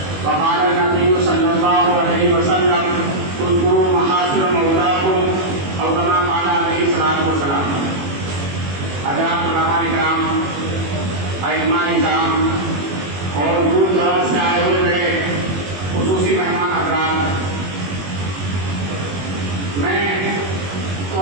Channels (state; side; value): late; left; 21 ms